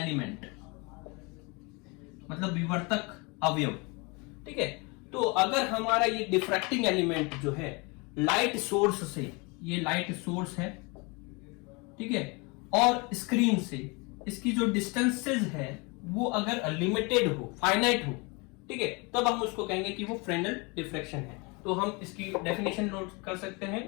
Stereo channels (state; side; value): quieter; right; 28.8 dB